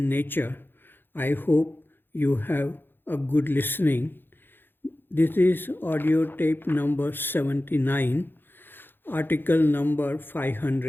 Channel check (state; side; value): late; right; 0.099 ms